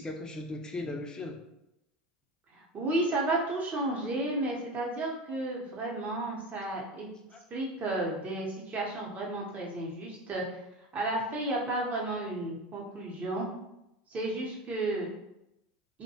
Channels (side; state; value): both; normal; correlation 0.28